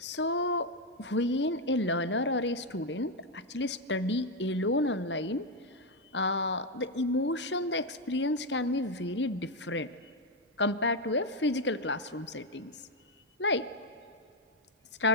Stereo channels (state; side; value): normal; both; correlation 0.04